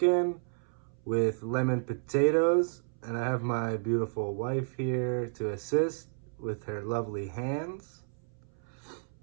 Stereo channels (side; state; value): left; silent; 57 dB below the other